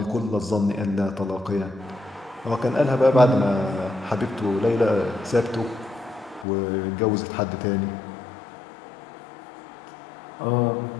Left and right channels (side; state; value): right; drops out; at 6.5 s